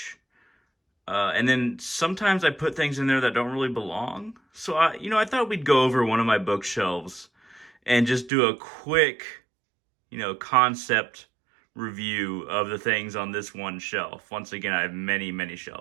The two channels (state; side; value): drops out; left; at 8.3 s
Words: And then sometimes I put things in there that don't really belong. So I thought we'd go over one of my bookshelves and just do a quick, concept review of the things on this one shelf. Once again, I have many, many